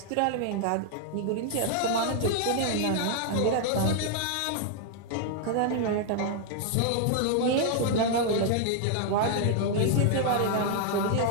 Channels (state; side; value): different; both; correlation 0.00